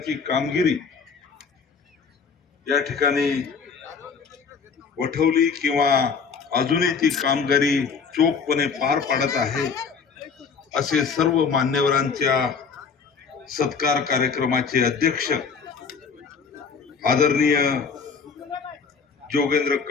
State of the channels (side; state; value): right; quieter; 5.7 dB